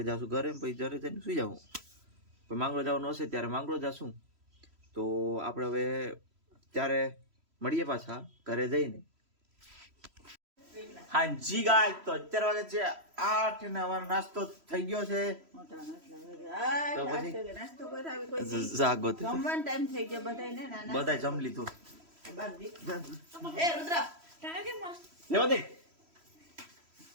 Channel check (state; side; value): late; left; 3.1 ms